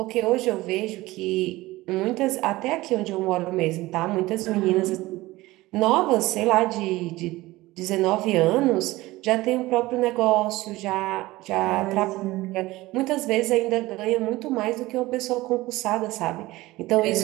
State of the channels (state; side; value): quieter; left; 18.9 dB